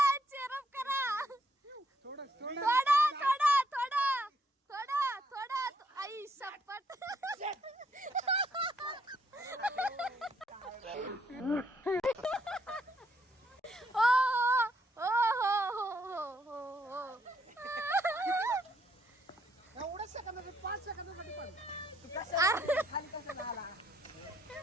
चेअरअप करा. थोडं थोडा थोडा थोडा थोडा थोडा. आई शपथ. ओ हो हो हो हो हो. एवढं सेकंदासाठी 5 सेकंदासाठी पण खाली कसं झाला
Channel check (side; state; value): both; normal; correlation 0.73